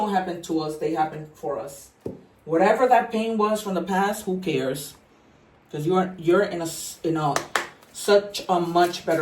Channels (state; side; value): identical; both; correlation 1.00